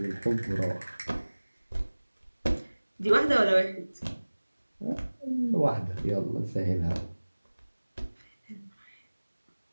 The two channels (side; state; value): both; inverted; correlation -1.00